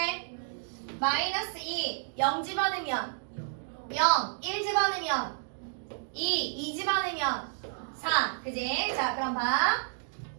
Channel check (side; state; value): left; silent; 57 dB below the other